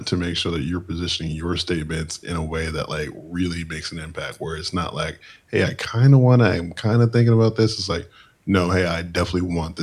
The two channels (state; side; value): identical; both; correlation 1.00